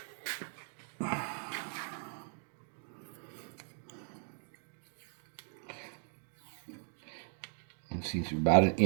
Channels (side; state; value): left; silent; 52 dB below the other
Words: It seems about an